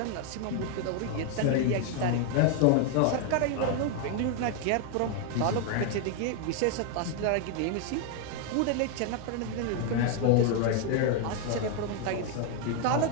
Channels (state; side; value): different; both; correlation 0.01